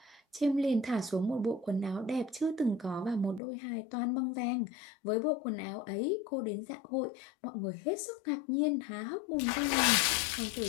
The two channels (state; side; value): drops out; right; at 3.4 s